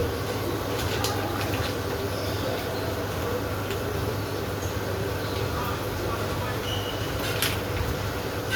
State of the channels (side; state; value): both; identical; correlation 1.00